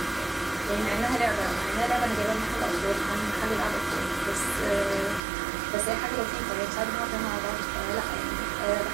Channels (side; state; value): left; drops out; at 5.2 s